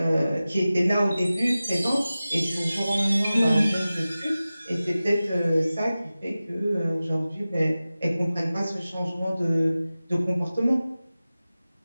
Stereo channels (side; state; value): both; inverted; correlation -0.96